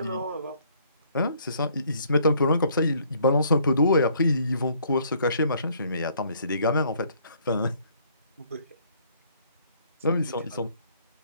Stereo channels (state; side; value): inverted; both; correlation -0.63